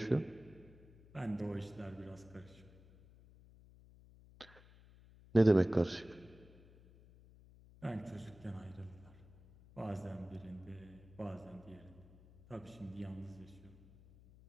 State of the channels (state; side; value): noise; left; hum, 22 dB below the sound